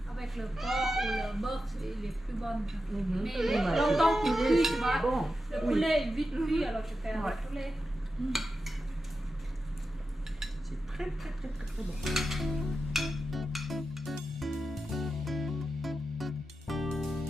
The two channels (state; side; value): normal; both; correlation 0.91